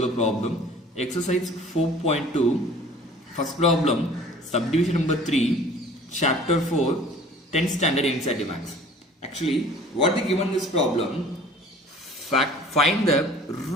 a problem. Exercise 4.2. First problem, subdivision number 3, chapter 4, 10th standard NCERT Maths. Actually, what they given this problem, find the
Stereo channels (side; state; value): both; normal; correlation 0.48